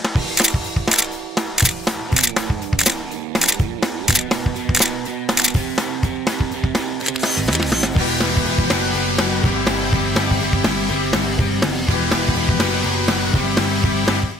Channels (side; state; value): both; normal; correlation 0.66